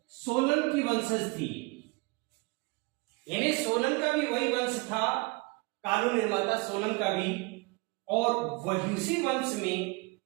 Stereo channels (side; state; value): left; quieter; 26.8 dB